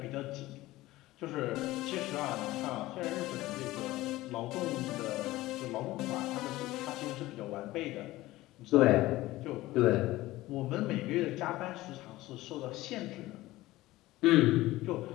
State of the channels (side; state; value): right; quieter; 17.7 dB